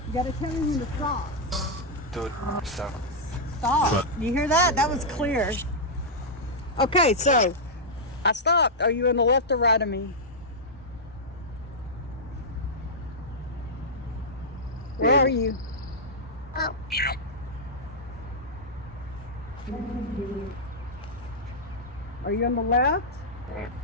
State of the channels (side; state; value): both; normal; correlation -0.07